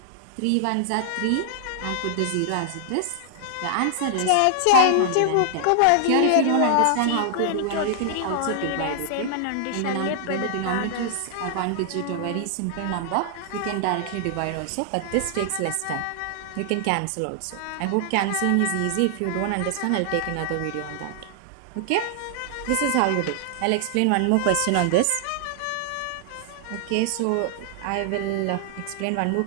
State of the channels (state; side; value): different; both; correlation 0.00